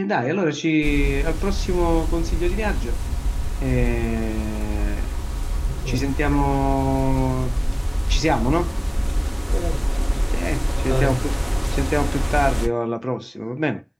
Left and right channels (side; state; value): both; identical; correlation 1.00